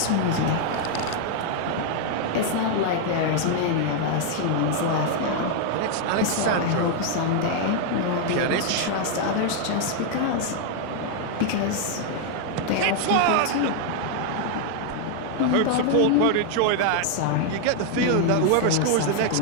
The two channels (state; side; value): different; both; correlation 0.00